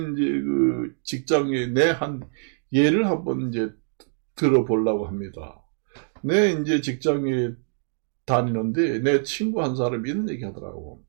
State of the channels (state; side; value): silent; left; digital silence